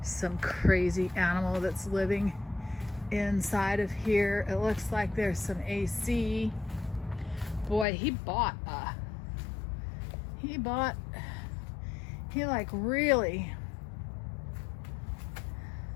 Some crazy animal that's living inside of here. It looks like there's some AC. Boy, he like really,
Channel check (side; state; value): right; drops out; at 7.9 s